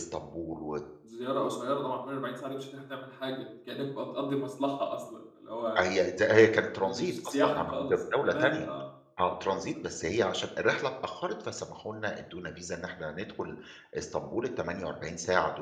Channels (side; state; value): both; identical; correlation 1.00